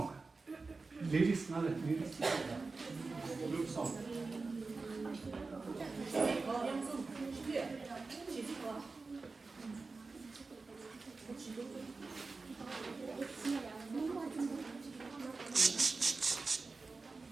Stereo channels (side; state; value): left; quieter; 4.0 dB